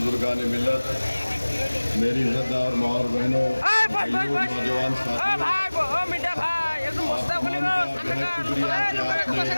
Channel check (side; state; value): both; inverted; correlation -1.00